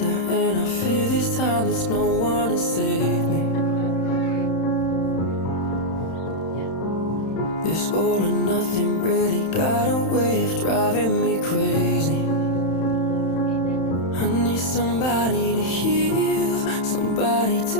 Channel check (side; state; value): right; late; 31 ms